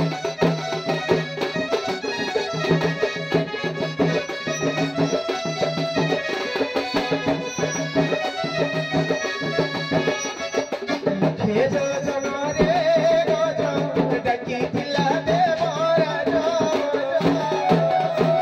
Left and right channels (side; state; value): both; identical; correlation 1.00